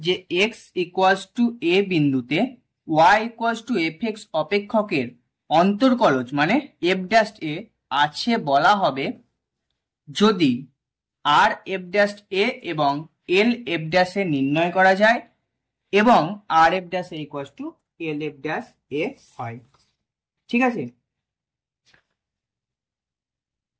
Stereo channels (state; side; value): identical; both; correlation 1.00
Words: যে এক্স ইকুয়ালস টু এ বিন্দুতে y equals to f x অপেক্ষকের অন্তর্কলজ মানে এফ ড্যাশ এ আছে বলা হবে যদি আর এফ ড্যাশ এ এবং এল এফ ড্যাশ এ নির্ণয় করা যায় এবং R f dash a equals to L f dash a হয়। ঠিক আছে,